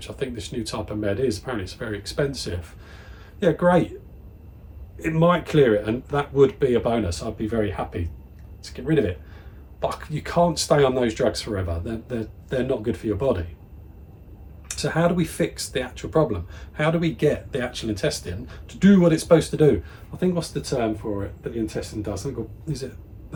I think this new type of med is, apparently it's very expensive. Yeah, great. It might clear it, and that would be a bonus. I'd be very happy to get rid of it. But you can't stay on those drugs forever. They're not good for your body. So how do we fix the actual problem? How do we get the actual intestine to do what it's supposed to do? I think, what's the term for it that the intestine does? I think, is it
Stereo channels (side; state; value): both; identical; correlation 1.00